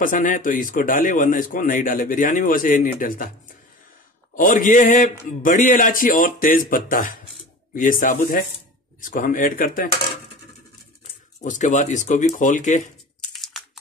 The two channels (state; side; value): normal; both; correlation 0.36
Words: है तो इसको डाले, वरना इसको नहीं डाले। बिरयानी में वैसे नहीं डलता। और ये है बड़ी इलायची और तेज पत्ता, ये साबुत है, इसको हम ऐड करते हैं। उसके बाद इसको भी खोल के